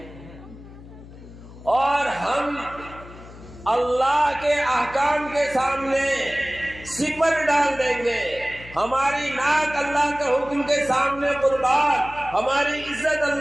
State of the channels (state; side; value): noise; left; hum, 18 dB below the sound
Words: اور ہم اللہ کے احکام کے سامنے سپر ڈال دیں گے، ہماری ناک اللہ کے حکم کے سامنے قربان، ہماری عزت